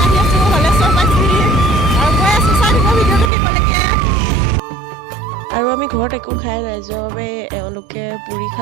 আৰু আমি ঘৰত একো খাই নাই যোৱাৰ বাবে এওঁলোকে পুৰি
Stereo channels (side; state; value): left; drops out; at 3.3 s